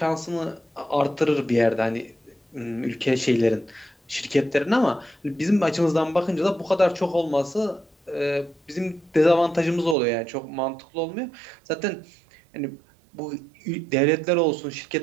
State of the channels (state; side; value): drops out; left; at 10.0 s